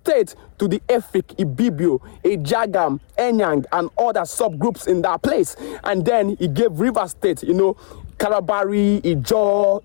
to the Efik, Ibibio, Ejagam, Enyang, and other subgroups in that place. And then he gave River State, you know, Kalabari, Ijo,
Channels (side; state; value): right; silent; 67 dB below the other